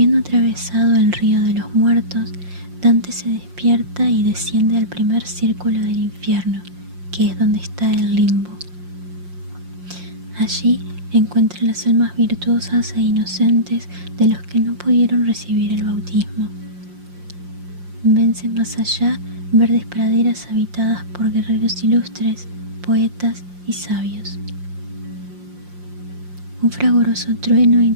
atravesado el río de los muertos, Dante se despierta y desciende al primer círculo del infierno, que es donde está el limbo. Allí encuentra las almas virtuosas e inocentes de los que no pudieron recibir el bautismo. Vence más allá verdes praderas habitadas por guerreros ilustres, poetas y sabios. Un fragoroso trueno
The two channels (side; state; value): left; late; 5.6 ms